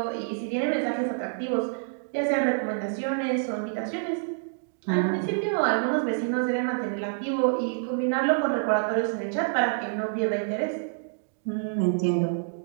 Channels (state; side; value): silent; left; digital silence